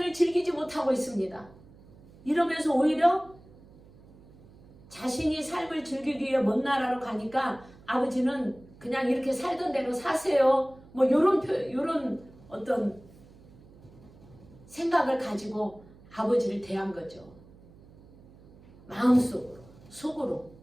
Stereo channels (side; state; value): right; noise; hum, 23 dB below the sound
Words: 즐기지 못하고 있습니다. 이러면서 오히려 자신이 삶을 즐기기 위해 먼 나라로 가니까 아버지는 그냥 이렇게 살던 대로 사세요. 뭐 요런 어떤 생각을 가지고 아버지를 대한 거죠. 마음속으로, 속으로.